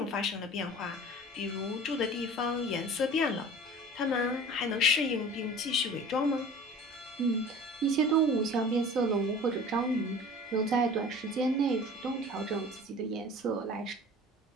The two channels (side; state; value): both; normal; correlation 0.42